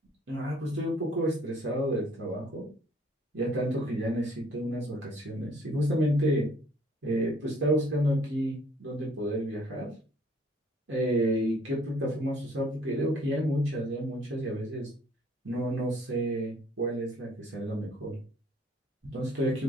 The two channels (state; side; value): normal; both; correlation 0.59